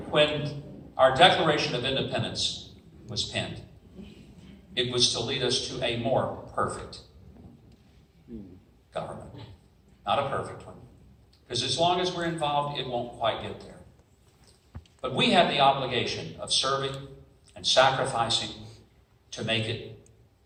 when our Declaration of Independence was penned, it was to lead us to a more perfect government. Not a perfect one. Because as long as we're involved, it won't quite get there. But we have the obligation of serving and sacrificing to make it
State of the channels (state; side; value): identical; both; correlation 1.00